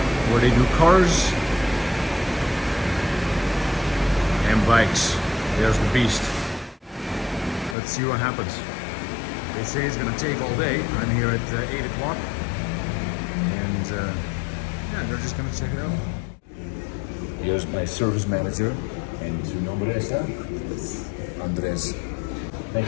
where they do cars and bikes. There's the beast. Let's see what happens. They say it's gonna take all day. I'm here at 8 o'clock. And yeah, they're just gonna check it out. Here's my service manager. And su nombre es Andrés.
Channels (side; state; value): right; drops out; at 7.8 s